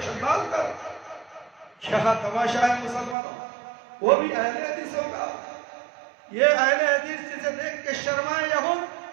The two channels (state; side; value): drops out; left; at 3.2 s